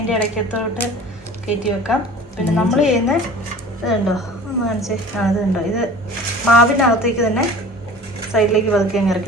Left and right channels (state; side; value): normal; both; correlation 0.43